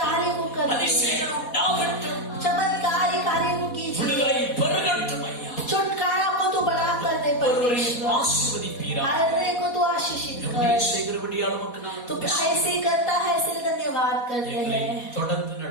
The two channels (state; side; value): late; right; 4.1 ms